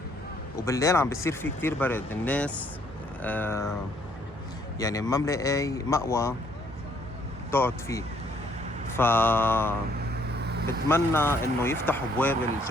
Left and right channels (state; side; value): normal; both; correlation 0.66